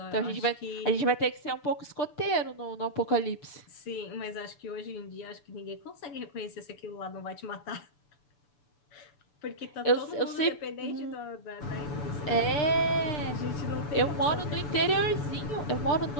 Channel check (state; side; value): late; right; 6.6 ms